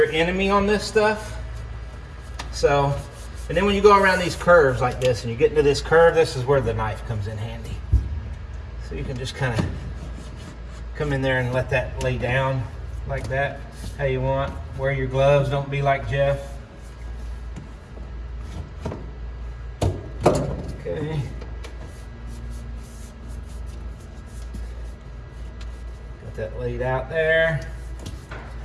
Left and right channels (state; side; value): identical; both; correlation 1.00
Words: enemy on this stuff. So, and then when you go around these curves like this and you get into this curve, this is where the knife comes in handy. So you can just kind of come in there and let that lay down like that, how you want. Wear your gloves, don't be like Jeff. Okay. Got that laid out there.